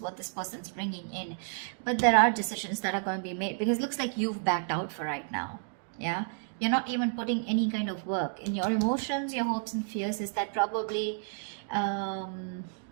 this person's bringing in. But there are decisions that are going to be made, because it looks like you've backed out for right now, yeah? You're not even putting any kind of work in your emotions, your hopes and fears. Is that probably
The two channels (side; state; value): left; silent; digital silence